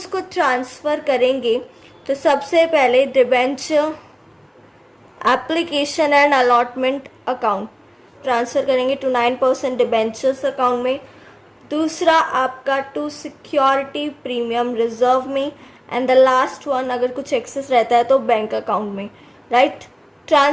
ट्रांसफ़र करेंगे तो सबसे पहले debenture application and allotment account transfer करेंगे टू 9% डिबेंचर्स अकाउंट में, दूसरा आपका टू सिक्योरिटी प्रीमियम रिजर्व में, एंड द लास्ट वन अगर कुछ एक्सेस रहता है तो बैंक अकाउंट में, राइट।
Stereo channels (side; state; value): both; identical; correlation 1.00